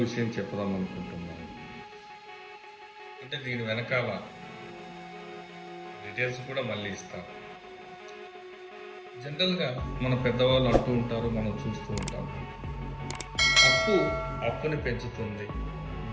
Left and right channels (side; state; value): both; identical; correlation 1.00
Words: విషయం చెప్పుదాం అనుకుంటున్నాను. అంటే దీని వెనకాల డీటెయిల్స్ కూడా మళ్ళీ ఇస్తాను. జనరల్గా మన పెద్దవాళ్ళు అంటూ ఉంటారు, మనం చూస్తూ ఉంటాం, అప్పు అప్పుని పెంచుతుంది,